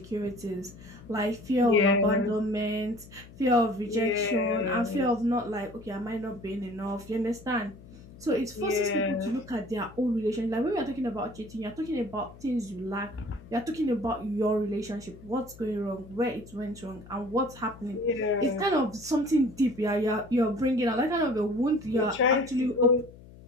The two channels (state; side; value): noise; left; hum, 19 dB below the sound